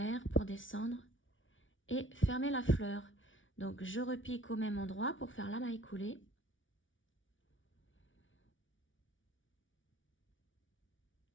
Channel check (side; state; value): right; late; 0.56 ms